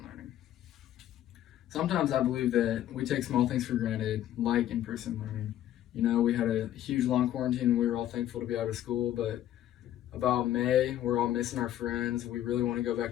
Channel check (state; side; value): quieter; right; 12.2 dB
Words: learning. Sometimes I believe that we take small things for granted, like in-person learning. You know, we had a huge long quarantine and we were all thankful to be out of school, but about May, we're all missing our friends. We really want to go